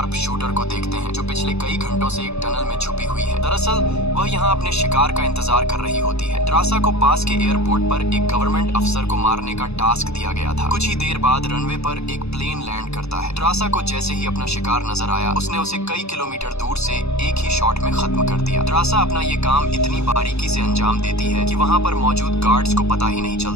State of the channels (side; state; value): right; late; 0.79 ms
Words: शूटर को देखते हैं जो पिछले कई घंटों से एक टनल में छुपी हुई है। दरअसल वह यहाँ अपने शिकार का इंतजार कर रही होती है। ड्रासा को पास के एयरपोर्ट पर एक गवर्नमेंट अफसर को मारने का टास्क दिया गया था। कुछ ही देर बाद रनवे पर एक प्लेन लैंड करता है। ड्रासा को जैसे ही अपना शिकार नजर आया, उसने उसे कई किलोमीटर दूर से एक ही शॉट में खत्म कर दिया। ड्रासा अपना ये काम इतनी बारीकी से अंजाम देती है कि वहाँ पर मौजूद गार्ड्स को पता ही नहीं